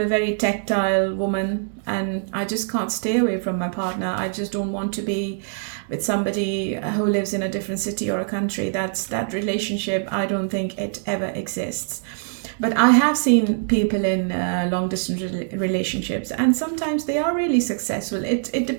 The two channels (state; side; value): silent; left; digital silence